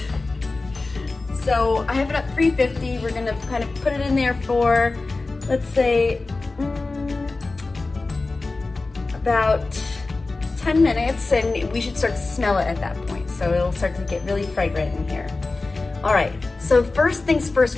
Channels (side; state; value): right; quieter; 3.5 dB